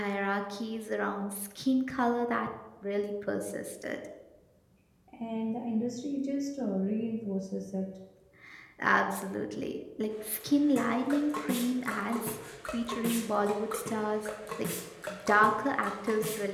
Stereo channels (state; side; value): identical; both; correlation 1.00